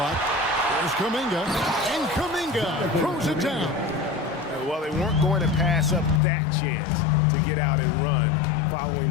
There's Kuminga. And Kuminga throws it down. Well, they weren't going to pass up that chance to get out and run following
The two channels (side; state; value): right; drops out; at 6.2 s